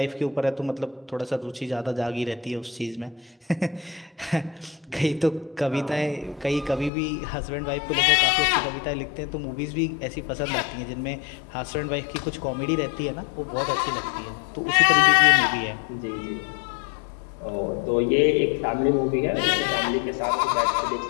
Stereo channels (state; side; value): drops out; right; at 6.9 s